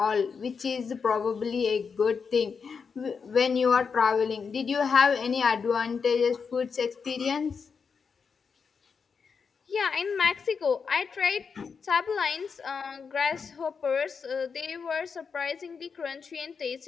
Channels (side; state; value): right; quieter; 5.7 dB